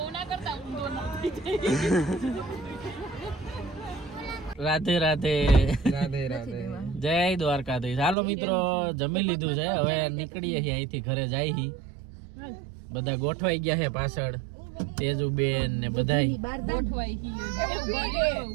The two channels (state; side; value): drops out; left; at 8.2 s